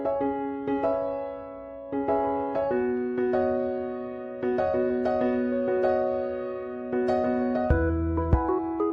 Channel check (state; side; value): identical; both; correlation 1.00